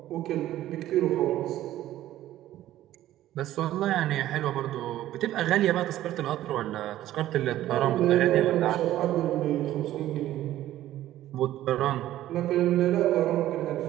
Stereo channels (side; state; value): left; quieter; 13.8 dB